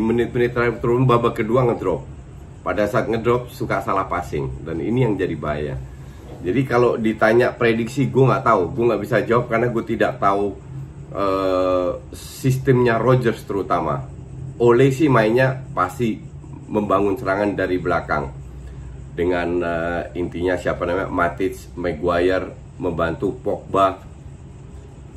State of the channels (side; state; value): both; identical; correlation 1.00